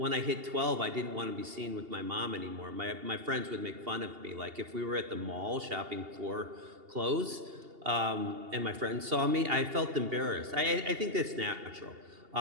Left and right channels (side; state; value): left; late; 2.8 ms